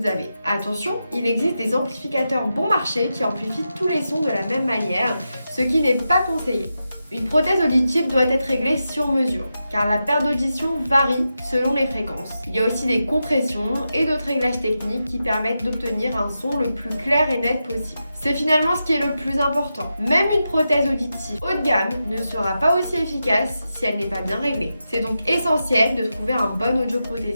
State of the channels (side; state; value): both; inverted; correlation -0.89